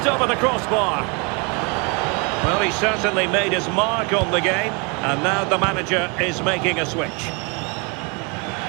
over the crossbar. Well, he certainly made his mark on the game, and now the manager is making a switch.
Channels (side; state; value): left; quieter; 32.1 dB